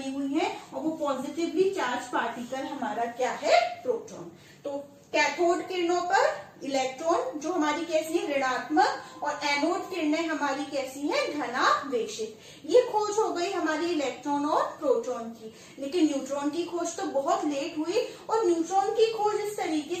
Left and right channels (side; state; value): both; identical; correlation 1.00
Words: हुई है, और वो पॉजिटिवली चार्ज पार्टिकल हमारा क्या है, प्रोटॉन। तो कैथोड किरणों पर इलेक्ट्रॉन जो हमारी कैसी है, ऋणात्मक, और एनोड किरणें हमारी कैसी हैं, धनावेशित। ये खोज हो गई हमारी इलेक्ट्रॉन और प्रोटॉन की। लेकिन न्यूट्रॉन की खोज तो बहुत लेट हुई, और न्यूट्रॉन की खोज इस